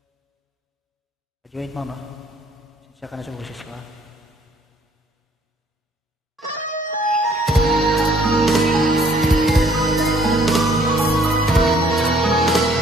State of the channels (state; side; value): normal; both; correlation 0.61